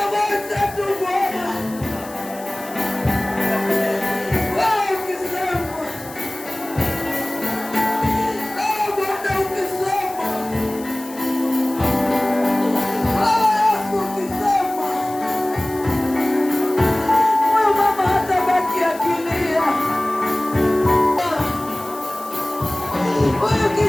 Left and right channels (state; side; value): noise; left; hiss, 18 dB below the sound